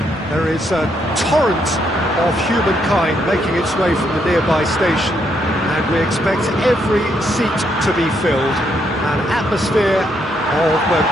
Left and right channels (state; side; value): normal; both; correlation 0.75